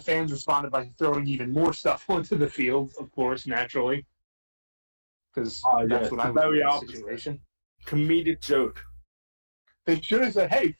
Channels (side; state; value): both; inverted; correlation -1.00